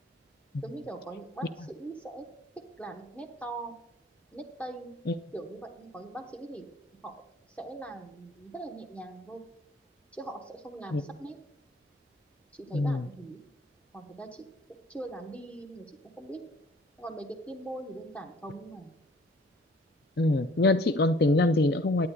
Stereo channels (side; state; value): both; normal; correlation 0.54